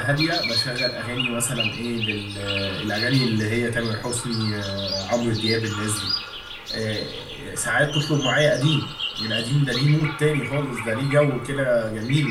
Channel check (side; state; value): both; identical; correlation 1.00